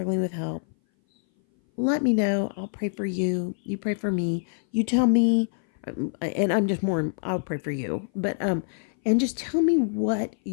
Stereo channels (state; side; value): silent; right; 58 dB below the other